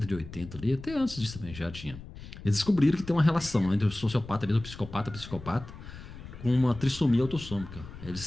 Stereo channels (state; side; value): noise; left; rumble, 14 dB below the sound